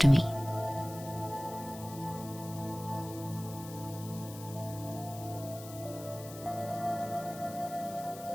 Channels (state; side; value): noise; left; hiss, 15 dB below the sound